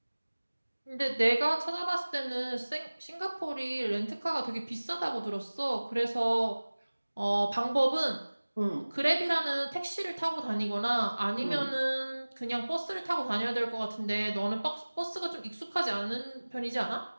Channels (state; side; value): inverted; both; correlation -1.00